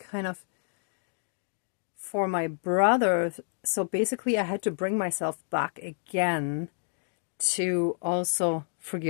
of for my brother, so basically I had to bring myself back again to also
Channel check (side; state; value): right; silent; digital silence